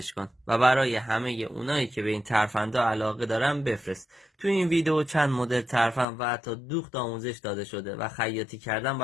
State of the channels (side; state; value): right; drops out; at 6.1 s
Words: کن و برای همه اونایی که به این ترفندها علاقه دارن بفرست. تو این ویدیو چند مدل ترفند و حتی دوخت آموزش داده شده و خیاطی کردن